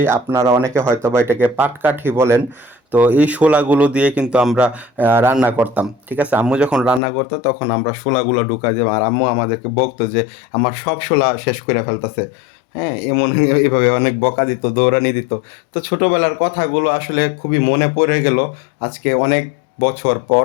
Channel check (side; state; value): right; drops out; at 7.0 s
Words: আপনারা অনেকে হয়তো বা এটাকে পাটকাঠি বলেন। তো এই শোলাগুলো দিয়ে কিন্তু আমরা রান্না করতাম, ঠিক আছে। আম্মু যখন রান্না করতো তখন আমরা শোলাগুলো ঢুকাই দিতাম, আর আম্মু আমাদেরকে বকতো যে আমার সব শোলা শেষ করে ফেলতেছে। হ্যাঁ, এমন এইভাবে অনেক বকা দিত, দৌড়ানি দিত। তো ছোটবেলার কথাগুলো আসলে খুবই মনে পড়ে গেল আজকে অনেক বছর পর